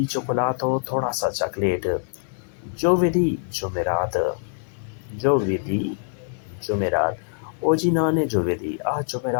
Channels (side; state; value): right; silent; digital silence